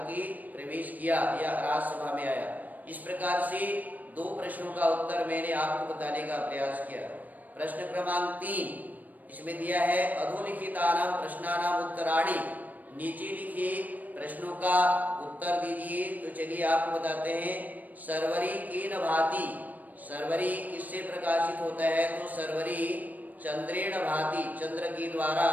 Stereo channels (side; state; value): left; late; 0.081 ms